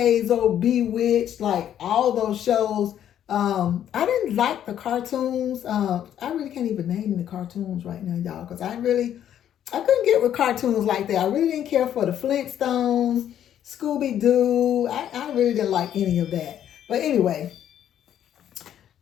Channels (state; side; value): quieter; right; 10.4 dB